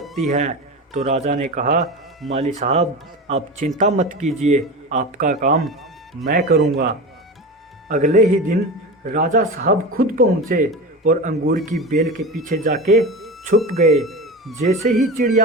है। तो राजा ने कहा, माली साहब आप चिंता मत कीजिए, आपका काम मैं करूँगा। अगले ही दिन राजा साहब खुद पहुँचे और अंगूर की बेल के पीछे जाके छुप गए। जैसे ही चिड़िया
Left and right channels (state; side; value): normal; both; correlation 0.27